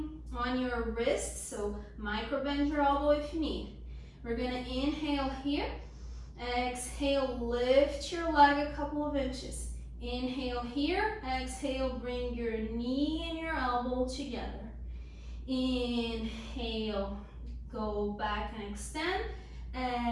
on your wrist, so micro bend your elbow if you need. We're going to inhale here. Exhale, lift your leg a couple of inches. Inhale here. Exhale, bring your knee and your elbow together. Inhale, go back and extend.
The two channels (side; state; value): both; identical; correlation 1.00